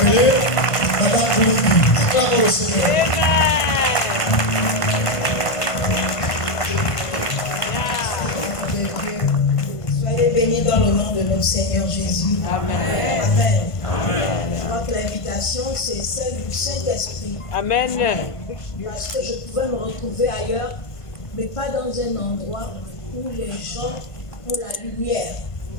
Madame Boulombi. Acclamons le Seigneur. Soyez bénis dans le nom de notre Seigneur Jésus. Amen. Amen. Je crois que l'invitation, c'est celle du Saint-Esprit. Amen. Parce que je pouvais me retrouver ailleurs, mais pas dans un endroit où les gens ont la lumière,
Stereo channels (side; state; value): right; late; 1.5 ms